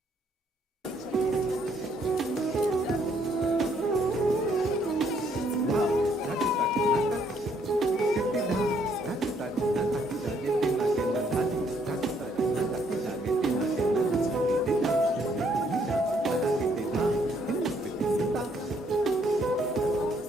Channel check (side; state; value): both; normal; correlation 0.68